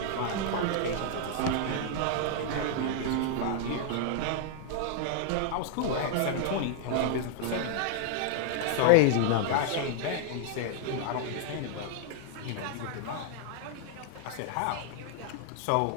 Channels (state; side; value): different; both; correlation 0.00